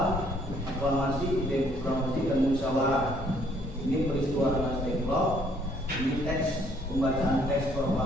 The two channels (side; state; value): both; normal; correlation 0.64